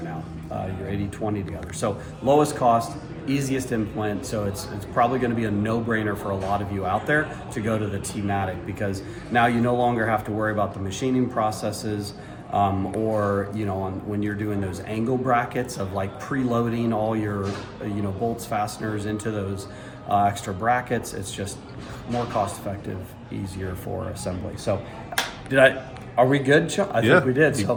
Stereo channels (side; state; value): both; identical; correlation 1.00